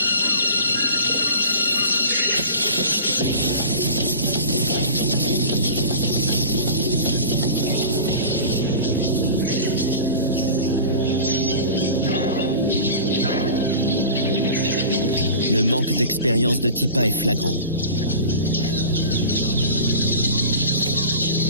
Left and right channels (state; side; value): inverted; both; correlation -0.36